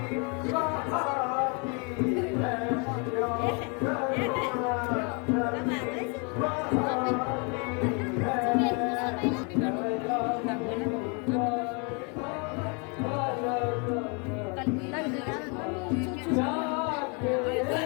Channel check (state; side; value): quieter; right; 34.4 dB